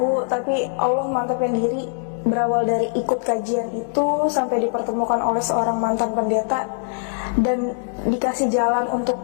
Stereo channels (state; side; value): silent; right; digital silence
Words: tapi Allah mantapin diri. Berawal dari ikut kajian itu sampai dipertemukan oleh seorang mantan pendeta dan dikasih jalan untuk